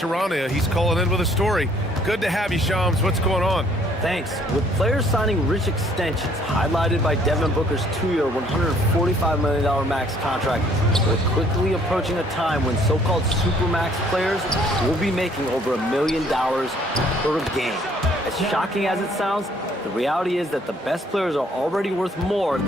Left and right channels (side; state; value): both; normal; correlation 0.62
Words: He's calling in with a story. Good to have you, Shams. What's going on? Thanks. With players signing rich extensions, highlighted by Devin Booker's 2-year, $145 million max contract, we're quickly approaching a time when so-called supermax players will be making over $1 million per game. As shocking as it sounds, the reality is that the best players are already worth more